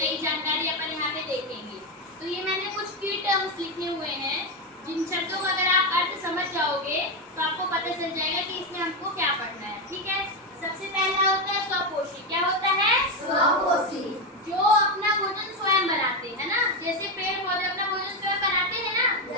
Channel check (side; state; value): both; normal; correlation 0.09